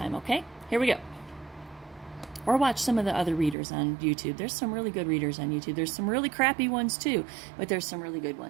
okay? Here we go. Or watch some of the other readers on YouTube. There's some really good readers on YouTube. There's some really crappy ones too, but there's some really good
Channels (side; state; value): left; drops out; at 3.6 s